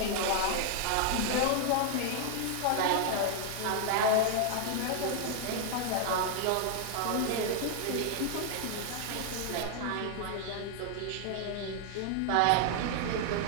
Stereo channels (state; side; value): different; both; correlation 0.00